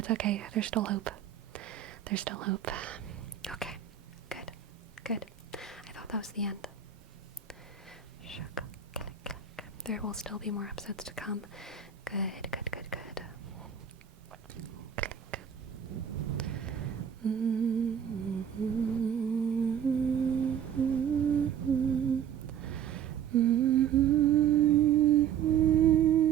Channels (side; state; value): left; quieter; 8.5 dB